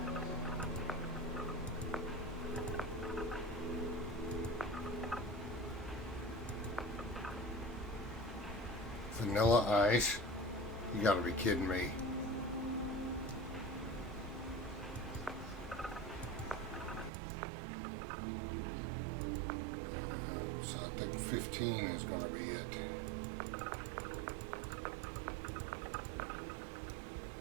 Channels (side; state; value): left; drops out; at 17.1 s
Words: Vanilla ice? You gotta be kidding me. So I think 15 is gonna be it.